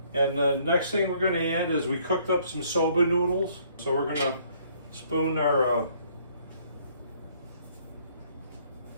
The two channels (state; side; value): inverted; both; correlation -0.63